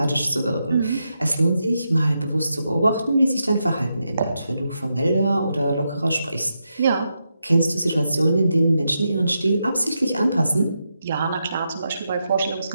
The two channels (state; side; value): inverted; both; correlation -0.85